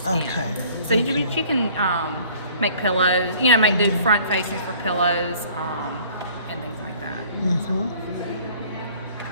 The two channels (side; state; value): both; inverted; correlation -0.53